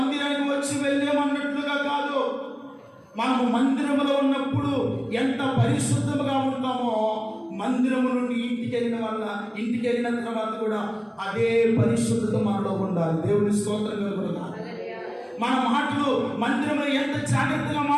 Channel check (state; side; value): identical; both; correlation 1.00